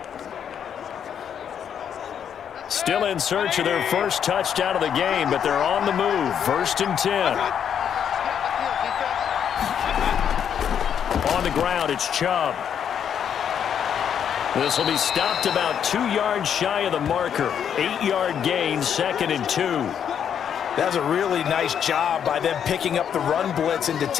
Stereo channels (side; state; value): right; quieter; 8.4 dB